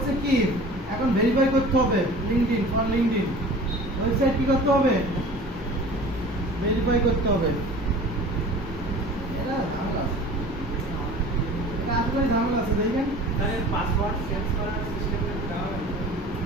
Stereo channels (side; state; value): both; normal; correlation 0.42